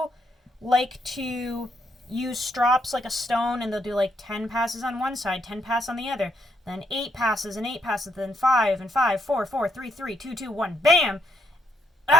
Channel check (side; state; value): both; normal; correlation 0.74